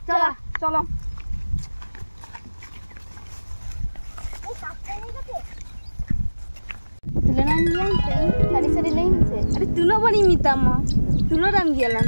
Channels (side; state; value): both; inverted; correlation -1.00